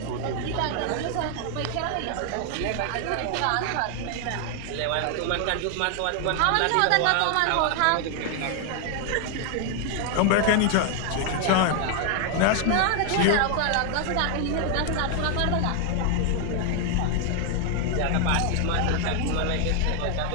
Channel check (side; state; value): both; different; correlation 0.00